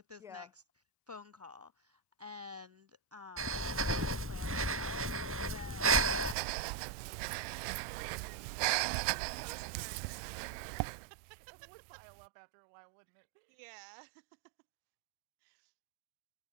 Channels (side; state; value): left; drops out; at 6.4 s